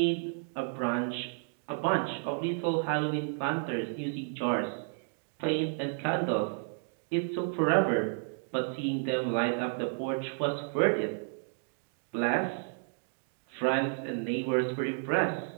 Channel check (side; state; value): left; silent; 57 dB below the other